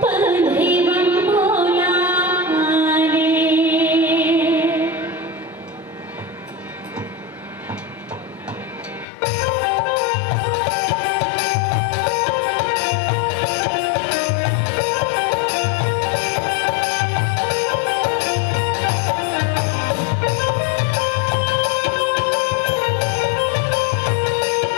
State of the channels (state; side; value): drops out; right; at 9.1 s